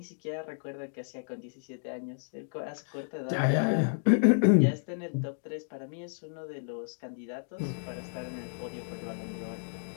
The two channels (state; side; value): silent; right; digital silence